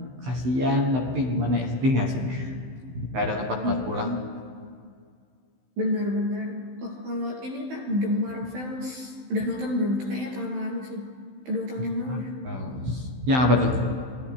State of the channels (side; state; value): left; late; 16 ms